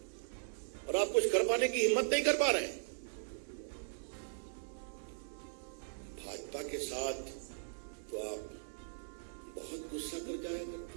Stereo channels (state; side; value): silent; left; 52 dB below the other